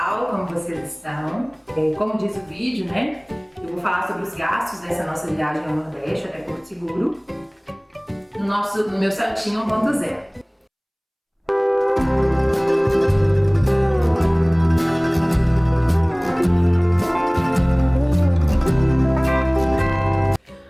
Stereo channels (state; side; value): identical; both; correlation 1.00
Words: como vocês estão? Como diz o vídeo, né? Eu vou falar sobre os gastos dessa nossa viagem ao Nordeste até Porto Seguro no meu Celtinha 1.0.